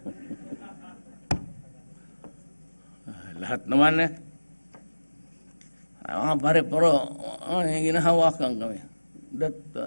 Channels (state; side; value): inverted; both; correlation -1.00